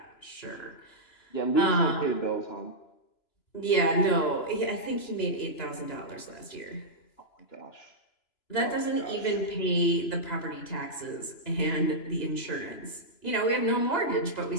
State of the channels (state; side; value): late; right; 2.9 ms